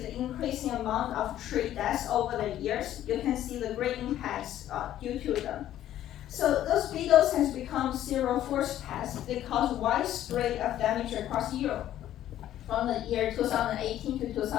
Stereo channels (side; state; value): right; quieter; 12.3 dB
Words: the increasing amount of tree deaths over the years. You can see the great impacts due to them. So those beetles has become serial forest pests. They cause widespread of damage across Europe. From the year 2018 to